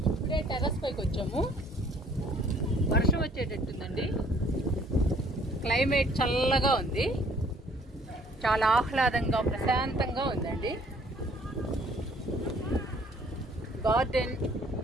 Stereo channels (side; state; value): both; normal; correlation 0.58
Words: ఇప్పుడే terrace పైకి వచ్చాము. వర్షం వచ్చేటట్టుందండి. క్లైమేట్ చల్లగా ఉంది, చాలా ఆహ్లాదంగా ప్రశాంతంగా ఉందండి. గార్డెన్